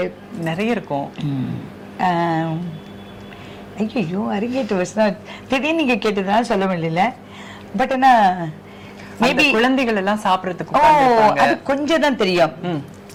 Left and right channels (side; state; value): both; identical; correlation 1.00